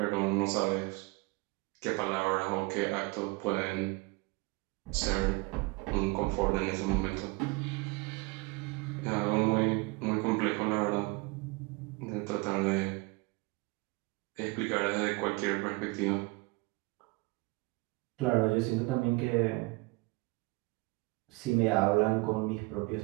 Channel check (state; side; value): quieter; left; 25.6 dB